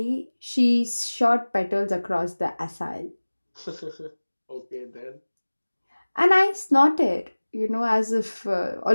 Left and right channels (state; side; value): inverted; both; correlation -1.00